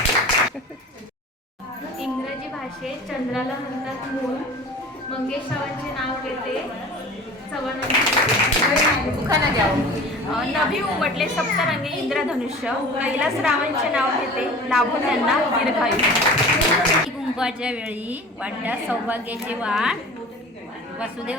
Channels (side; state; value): both; normal; correlation 0.40